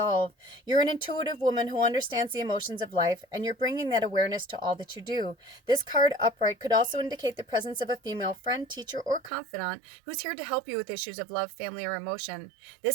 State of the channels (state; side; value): drops out; left; at 9.3 s